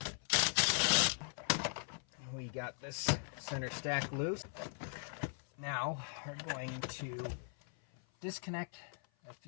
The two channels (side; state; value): right; silent; 52 dB below the other